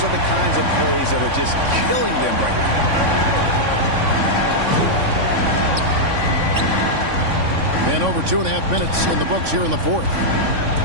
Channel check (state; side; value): late; left; 3.5 ms